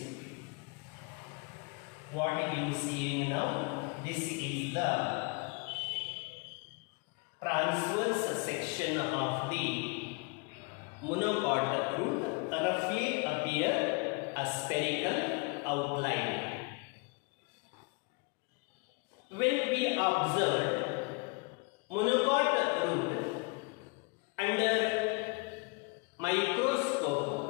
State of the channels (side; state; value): right; quieter; 31.2 dB